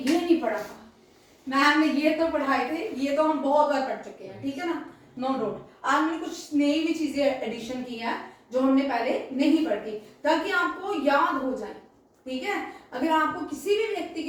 नहीं पढ़ा था, मैम ने ये तो पढ़ाए थे, ये तो हम बहुत बार पढ़ चुके हैं, ठीक है ना, नो डाउट। आज मैंने कुछ नई भी चीजें एडिशन की है जो हमने पहले नहीं पढ़ी, ताकि आपको याद हो जाए, ठीक है। अगर आपको किसी भी व्यक्ति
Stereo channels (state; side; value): identical; both; correlation 1.00